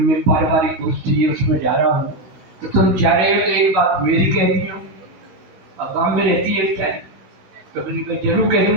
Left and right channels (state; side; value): late; left; 17 ms